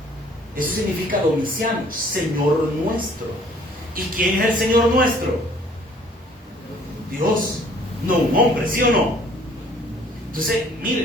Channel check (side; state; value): both; normal; correlation 0.57